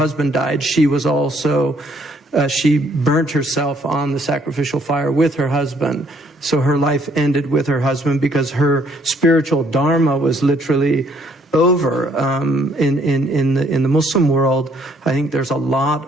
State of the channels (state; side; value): normal; both; correlation 0.66